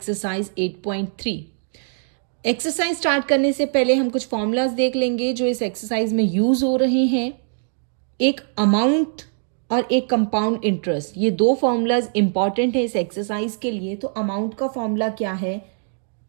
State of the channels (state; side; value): silent; left; digital silence